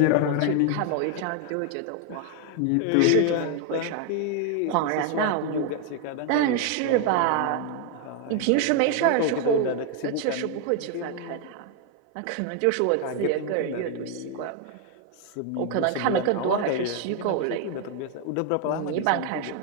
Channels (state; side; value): different; both; correlation 0.01